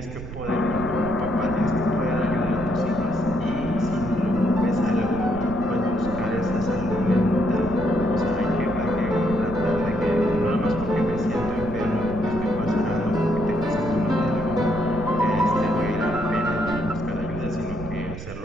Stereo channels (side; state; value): right; noise; rumble, 11 dB below the sound